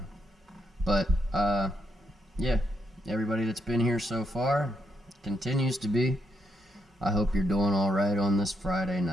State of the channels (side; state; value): both; normal; correlation 0.78